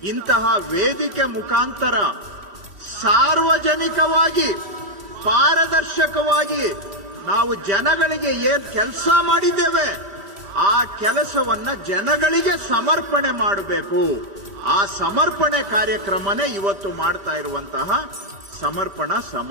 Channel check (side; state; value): left; late; 3.1 ms